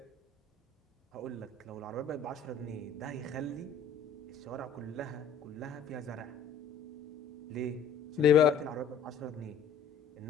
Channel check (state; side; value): quieter; right; 5.9 dB